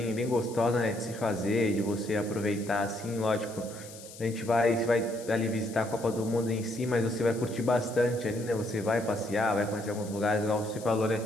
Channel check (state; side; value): noise; left; hiss, 17 dB below the sound